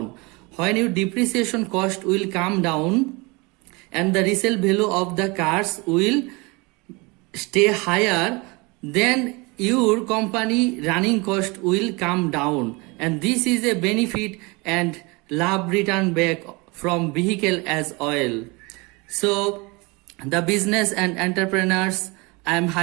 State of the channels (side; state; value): left; quieter; 26.7 dB